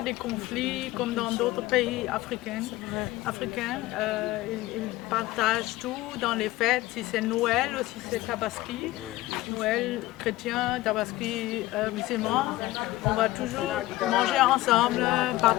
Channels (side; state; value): right; quieter; 17.7 dB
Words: des conflits comme dans d'autres pays africains. Ils partagent tout dans les fêtes, si c'est Noël ou si c'est Tabaski. Noël chrétien, Tabaski musulman. On va toujours manger ensemble,